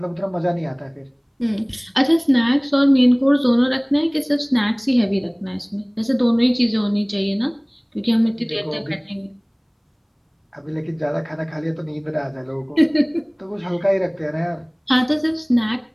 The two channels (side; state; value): both; identical; correlation 1.00